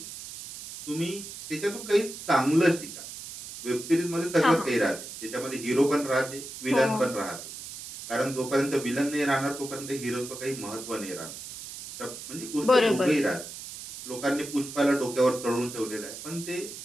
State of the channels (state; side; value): noise; right; hiss, 11 dB below the sound